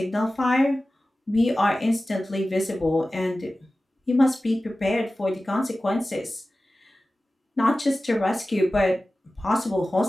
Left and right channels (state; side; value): normal; both; correlation 0.96